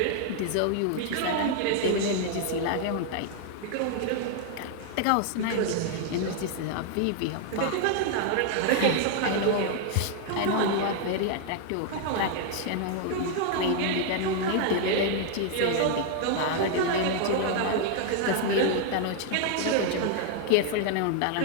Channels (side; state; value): both; different; correlation 0.00